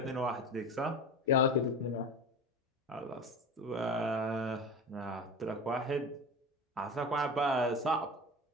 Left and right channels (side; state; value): both; normal; correlation 0.30